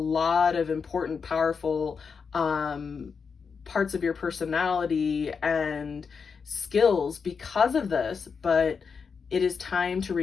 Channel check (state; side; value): quieter; right; 5.7 dB